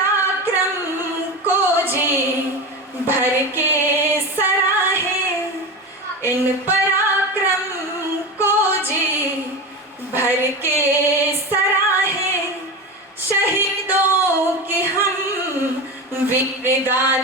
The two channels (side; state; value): both; normal; correlation 0.24